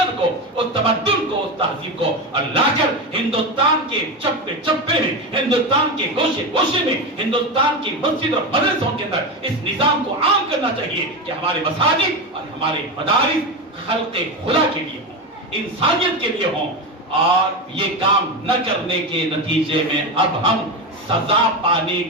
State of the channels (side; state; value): both; normal; correlation 0.17